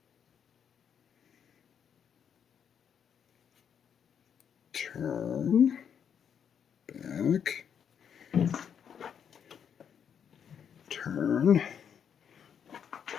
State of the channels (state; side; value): quieter; right; 7.9 dB